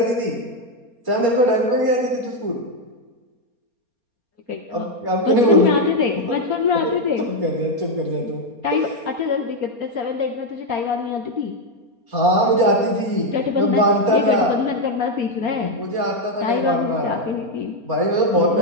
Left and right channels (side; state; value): left; late; 4.3 ms